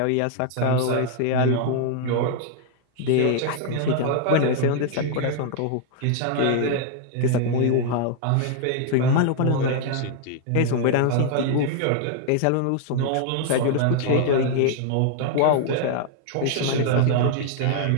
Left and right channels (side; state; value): both; different; correlation 0.00